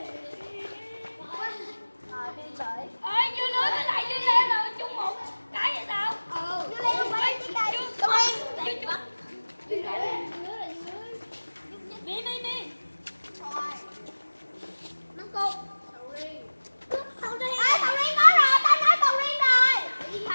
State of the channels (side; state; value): both; inverted; correlation -1.00